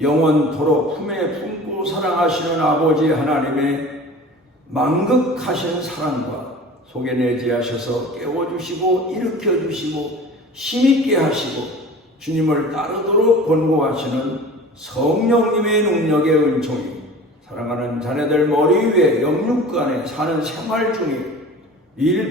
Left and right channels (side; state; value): both; normal; correlation 0.40